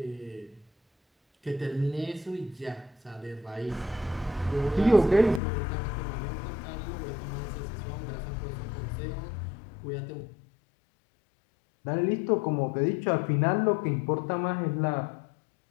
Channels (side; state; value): right; drops out; at 5.4 s